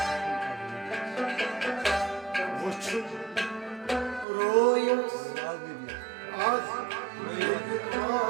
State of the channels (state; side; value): drops out; left; at 4.2 s